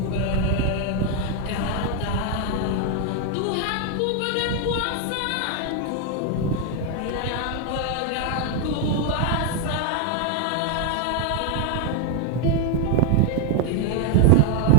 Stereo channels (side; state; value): both; different; correlation 0.01